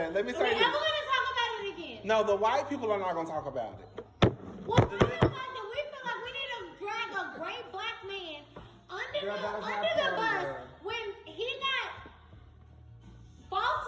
Let me say Are we this. ever going to talk about it again? No, the white people are not going to talk about it. Well, we feel like we need to drag a great black man under the bus when he got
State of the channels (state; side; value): identical; both; correlation 1.00